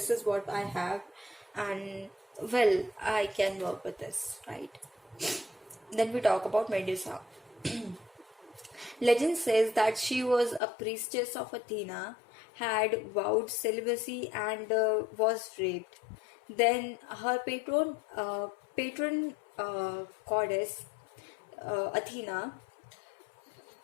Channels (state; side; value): drops out; right; at 10.6 s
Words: is what I have, and well, I can work with this, right? Then we talk about Medusa. Legend says that she was a priestess of Athena, had vowed celibacy, and was raped. Then her patron goddess Athena,